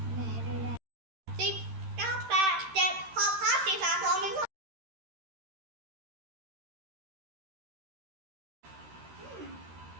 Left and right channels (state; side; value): late; left; 13 ms